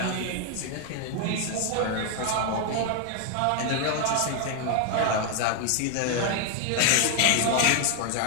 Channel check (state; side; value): different; both; correlation 0.00